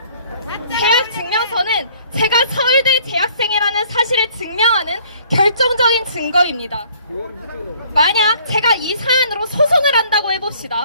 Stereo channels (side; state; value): both; inverted; correlation -0.57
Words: 재학 증명서는 제가 서울대 재학생이라는 사실을 증명하는 결정적인 증거입니다. 만약 제가 이 사안으로 소송을 한다고